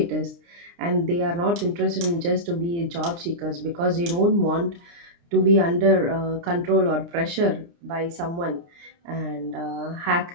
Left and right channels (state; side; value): late; left; 29 ms